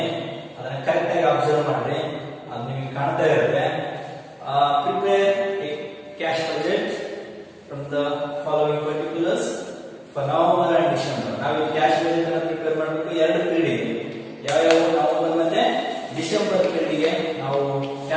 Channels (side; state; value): both; identical; correlation 1.00